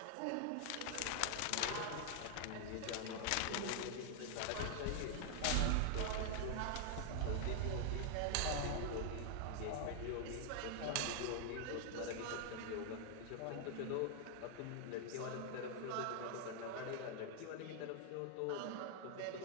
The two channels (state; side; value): different; both; correlation 0.00